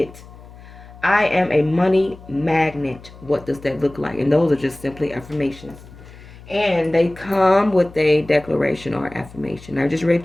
I am a money magnet. What does that look like? And those are just simply affirmations. And they come with a declaration or affirmation. I just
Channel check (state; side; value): noise; left; hum, 19 dB below the sound